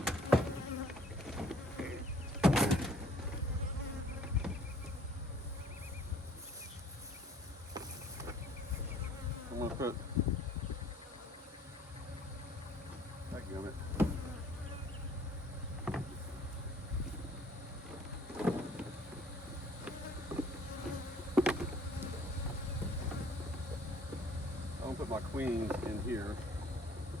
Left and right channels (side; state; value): both; normal; correlation 0.56